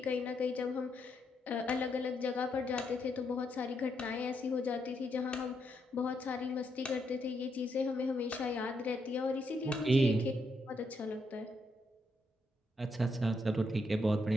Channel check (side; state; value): both; normal; correlation 0.78